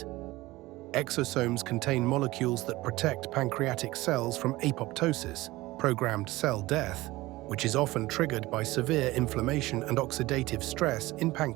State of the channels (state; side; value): quieter; left; 19.1 dB